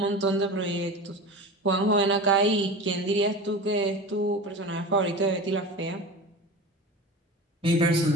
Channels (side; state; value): both; normal; correlation 0.31